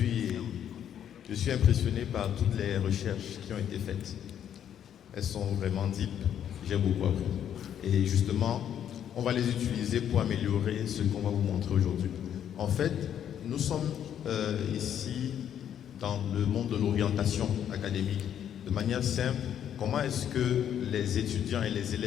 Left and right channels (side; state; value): right; quieter; 9.6 dB